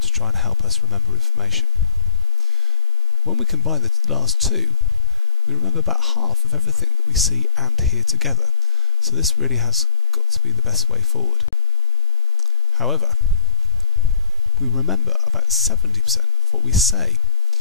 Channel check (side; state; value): both; normal; correlation 0.95